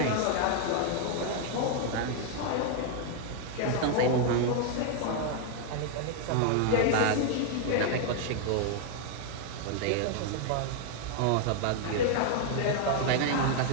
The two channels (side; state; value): both; different; correlation 0.00